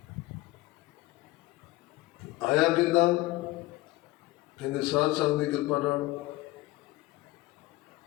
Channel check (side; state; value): right; quieter; 18.6 dB